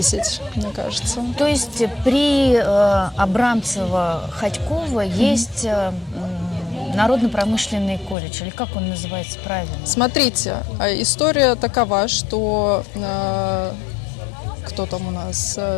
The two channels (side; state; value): right; drops out; at 8.2 s